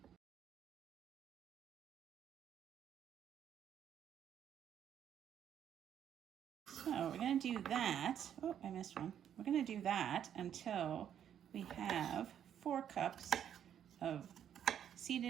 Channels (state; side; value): quieter; left; 9.5 dB